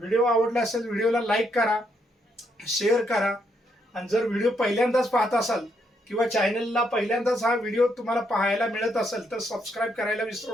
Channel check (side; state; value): both; normal; correlation 0.75